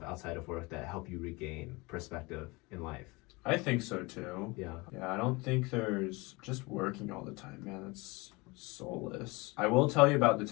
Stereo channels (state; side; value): quieter; right; 25.0 dB